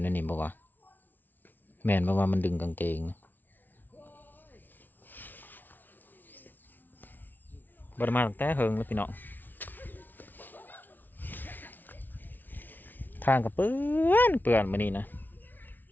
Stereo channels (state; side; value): late; right; 0.087 ms